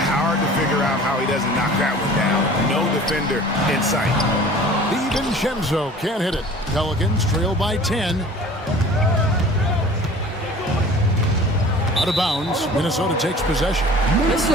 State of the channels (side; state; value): both; normal; correlation 0.45